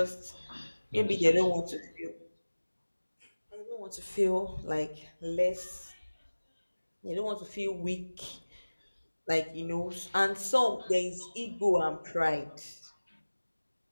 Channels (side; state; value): both; inverted; correlation -1.00